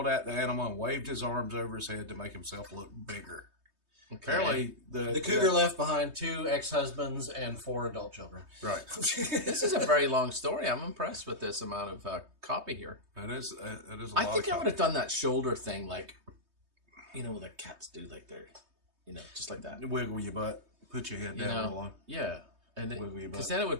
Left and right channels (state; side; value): late; left; 3.2 ms